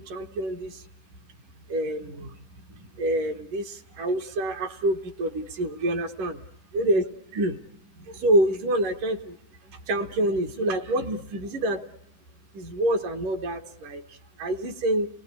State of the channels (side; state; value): left; late; 10 ms